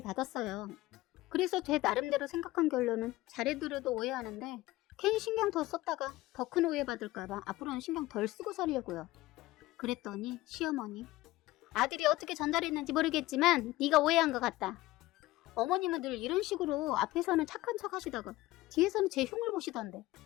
그래서 제 나름대로 생각한 결론은 잘해드려도 오해하는데 괜히 신경 더 썼다가 더 큰 오해 받을까봐 앞으로는 신경 덜 쓰고 살려고요. 그랬더니 시어머니, 아들이 어떻게 전달했는지 모르겠지만 네가 오해한 것 같다. 어머님은 늘 이런 식으로 앞에서는 착한 척 하시다가 뒤에서는 제 흉을 보시던데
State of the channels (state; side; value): quieter; right; 18.0 dB